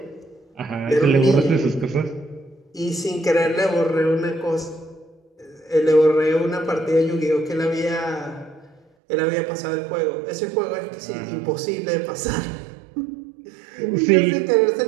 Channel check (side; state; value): left; drops out; at 8.8 s